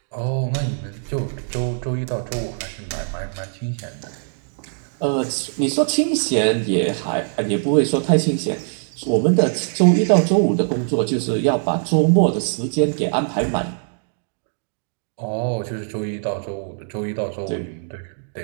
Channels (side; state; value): left; silent; digital silence